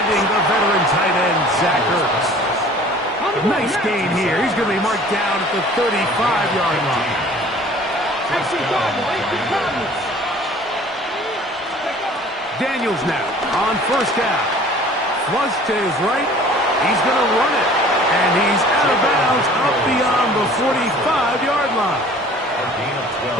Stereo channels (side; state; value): both; normal; correlation 0.49